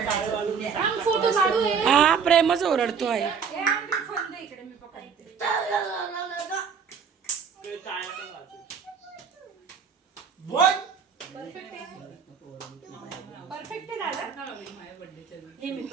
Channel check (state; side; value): quieter; left; 6.4 dB